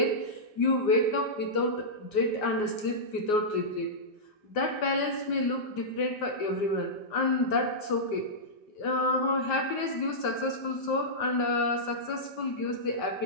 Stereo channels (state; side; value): late; right; 5.0 ms